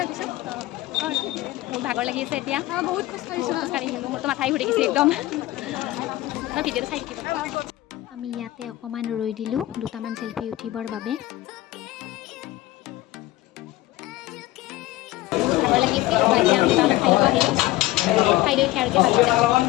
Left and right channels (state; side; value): quieter; right; 16.8 dB